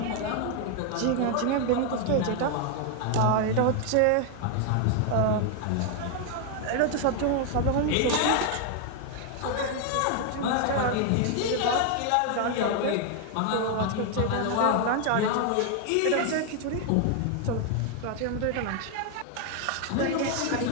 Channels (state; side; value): different; both; correlation 0.00